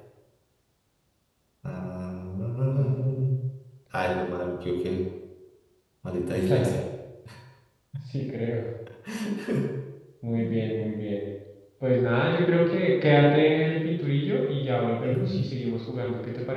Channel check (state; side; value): identical; both; correlation 1.00